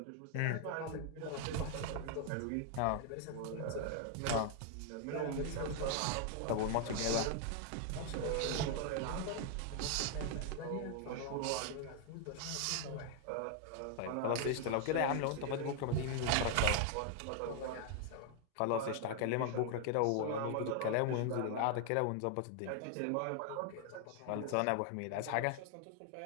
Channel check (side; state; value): both; different; correlation 0.00